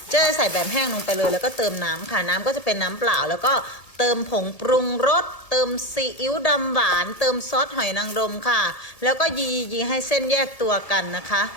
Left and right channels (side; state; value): right; late; 1.8 ms